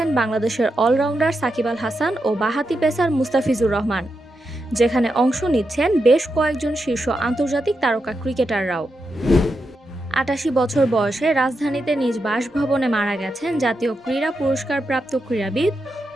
বাংলাদেশের অলরাউন্ডার সাকিব আল হাসান ও বাঁহাতি পেসার মুস্তাফিজুর রহমান, যেখানে অংশ নিচ্ছেন বেশ কয়েকজন শীর্ষ আন্তর্জাতিক তারকা ক্রিকেটাররাও। ৮৮ বছর বয়সে রাজধানীতে নিজ বাসভবনে মারা গেছেন জাতীয় ক্রীড়া পুরস্কারপ্রাপ্ত ক্রীড়াবিদ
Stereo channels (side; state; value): both; normal; correlation 0.86